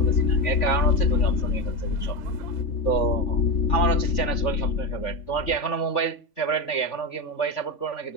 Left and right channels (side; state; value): right; late; 3.5 ms